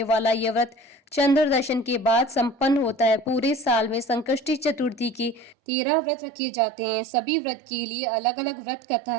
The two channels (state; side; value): drops out; left; at 5.6 s